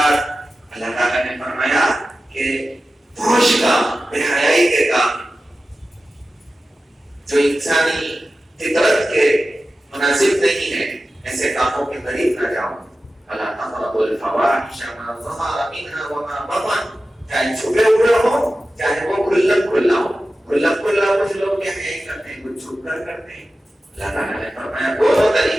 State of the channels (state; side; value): normal; both; correlation 0.94